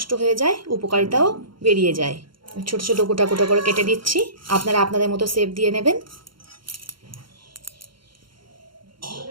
হয়ে যায়, উপকারিতাও বেরিয়ে যায়। ছোট ছোট গোটা গোটা করে কেটে দিচ্ছি। আপনারা আপনাদের মতো শেপ দিয়ে নেবেন।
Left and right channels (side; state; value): left; late; 0.73 ms